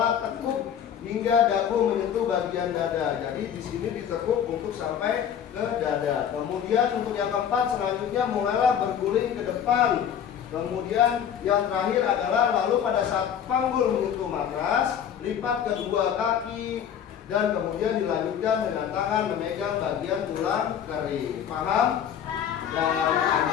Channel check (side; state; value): right; quieter; 8.8 dB